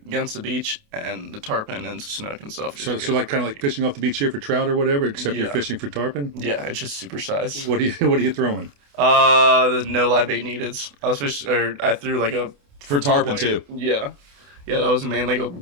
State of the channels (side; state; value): left; late; 28 ms